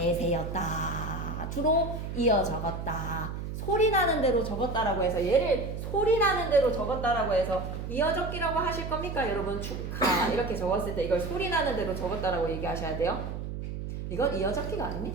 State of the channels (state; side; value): noise; right; hum, 6 dB below the sound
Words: 주로 이어 적었다. 소리 나는 대로 적었다라고 해서 얘를 소리 나는 대로 적었다라고 해서 이어적기라고 하실 겁니까? 여러분 축하 이렇게 적었을 때 이걸 소리 나는 대로 적었다라고 얘기하셔야 돼요. 이건 이어적기가